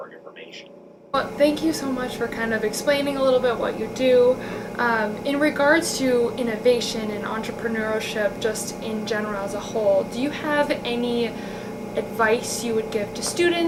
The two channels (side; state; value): both; identical; correlation 1.00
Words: information. Well, thank you so much for kind of explaining a little bit what you do. In regards to innovation and entrepreneurship, just in general as a whole, do you have any advice you would give to